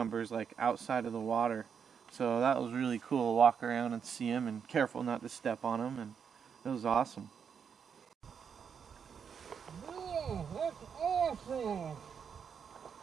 like outside of the water. So that was really cool to walk around and see them, and careful not to step on them, and it was awesome. Oh, that's awesome!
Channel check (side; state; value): left; quieter; 7.0 dB